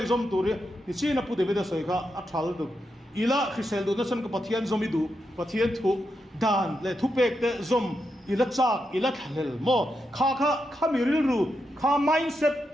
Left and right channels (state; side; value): normal; both; correlation 0.85